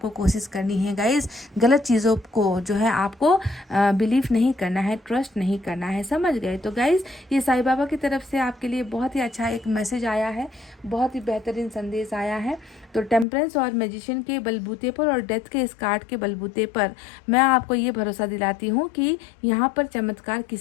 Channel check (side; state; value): right; drops out; at 13.2 s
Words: कोशिश करनी है गाइस। गलत चीज़ों को जो है आपको बिलीव नहीं करना है, ट्रस्ट नहीं करना है, समझ गए। तो गाइस ये साईं बाबा की तरफ से आपके लिए बहुत ही अच्छा एक मैसेज आया है, बहुत ही बेहतरीन संदेश आया है। तो टेम्परेंस और मैजिशियन के बलबूते पर और डेथ के इस कार्ड के बलबूते पर मैं आपको ये भरोसा दिलाती हूँ कि यहाँ पर चमत्कार